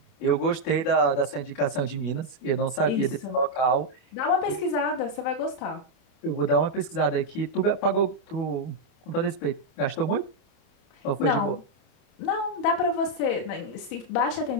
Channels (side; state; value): right; late; 28 ms